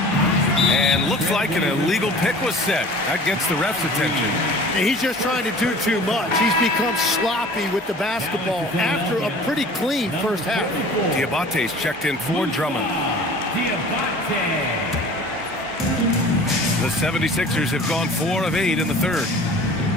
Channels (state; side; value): normal; both; correlation 0.45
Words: And looks like an illegal pick was set. That gets the ref's attention. He's just trying to do too much. He's become sloppy with the basketball after a pretty clean first half. Diabate's checked in for Drummond. The 76ers have gone 4 of 8 in the third.